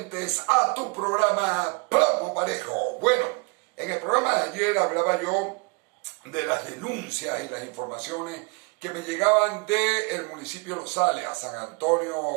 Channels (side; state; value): left; quieter; 32.1 dB